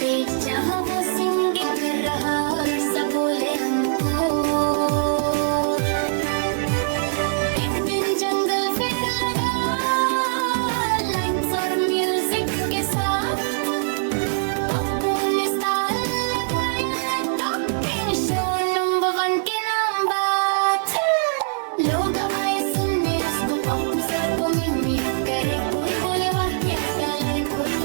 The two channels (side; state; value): left; silent; 64 dB below the other